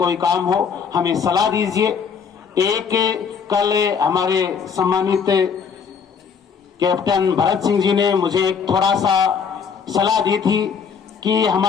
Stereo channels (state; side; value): quieter; right; 6.5 dB